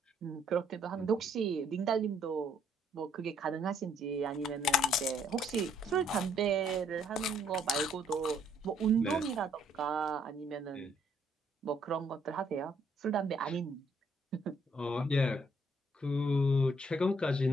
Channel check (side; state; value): both; normal; correlation 0.67